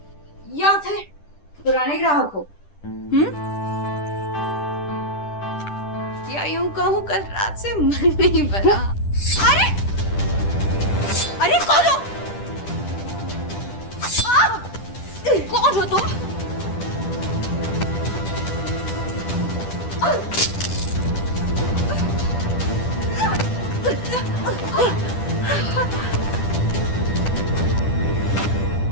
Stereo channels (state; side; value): late; right; 10 ms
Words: या फिर पुराने ग्राहक हो? या यूं कहूं कल रात से मन नहीं भरा। अरे अरे कौन हो? कौन हो तुम?